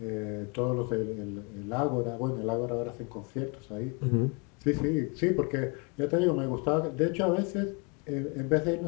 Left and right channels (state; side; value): quieter; right; 33.0 dB